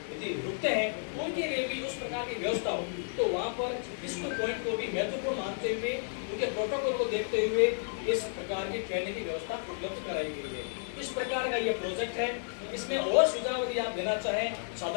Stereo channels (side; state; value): right; silent; 56 dB below the other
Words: रुकते हैं, उनके लिए भी उस प्रकार की व्यवस्था हो, तो वहाँ पर इस पॉइंट को भी महत्वपूर्ण मानते हुए, उनके प्रोटोकॉल को देखते हुए इस प्रकार की ट्रेनिंग की व्यवस्था उपलब्ध कराई गई है। इस प्रकार का ये प्रोजेक्ट है। इसमें और सुझाव यदि आप देना चाहें